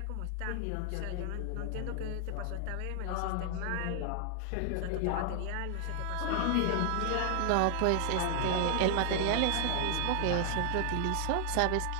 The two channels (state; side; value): different; both; correlation 0.00